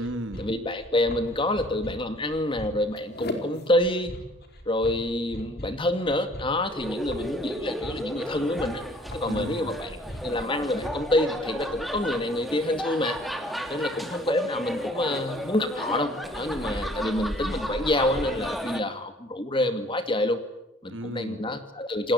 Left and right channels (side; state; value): both; normal; correlation 0.56